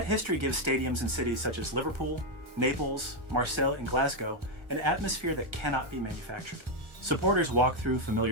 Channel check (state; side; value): late; left; 1.4 ms